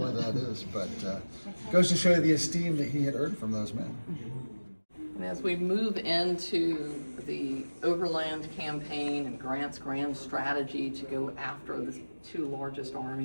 as that is, but goes to show you the esteem that he had earned from those men. And as we move into the Overland Campaign and Grant's grand strategy to go after the 2 largest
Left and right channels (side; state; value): both; inverted; correlation -1.00